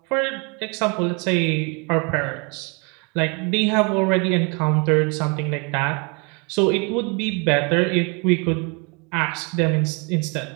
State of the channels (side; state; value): left; quieter; 32.8 dB